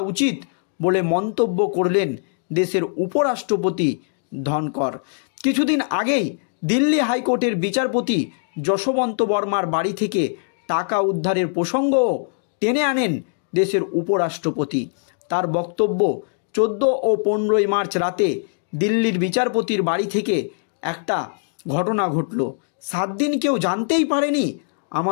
উচিত বলে মন্তব্য করলেন দেশের উপরাষ্ট্রপতি ধনকর। কিছুদিন আগেই দিল্লি হাইকোর্টের বিচারপতি যশবন্ত বর্মার বাড়ি থেকে টাকা উদ্ধারের প্রসঙ্গও টেনে আনেন দেশের উপরাষ্ট্রপতি। তার বক্তব্য, 14 ও 15 মার্চ রাতে দিল্লির বিচারপতির বাড়ি থেকে একটা ঘটনা ঘটল। 7 দিন কেউ জানতেই পারেনি।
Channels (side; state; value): right; silent; digital silence